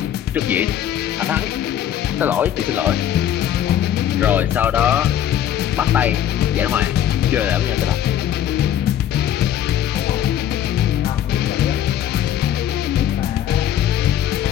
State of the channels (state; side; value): quieter; right; 10.6 dB